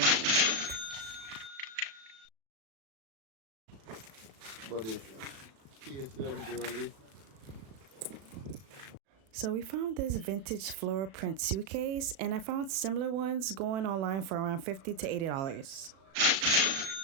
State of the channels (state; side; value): late; left; 36 ms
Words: But the case them dirty. So we found this vintage floral print suitcase, and I found similar ones going online for around $50 to $80.